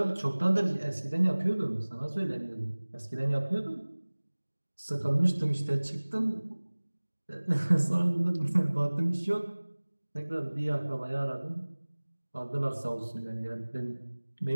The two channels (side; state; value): both; inverted; correlation -1.00